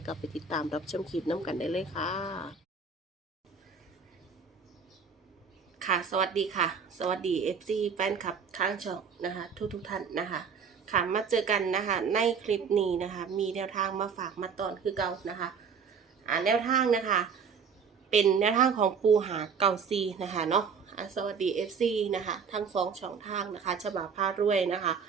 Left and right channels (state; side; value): quieter; left; 6.0 dB